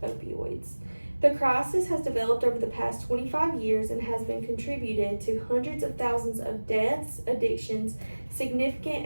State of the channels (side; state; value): both; inverted; correlation -1.00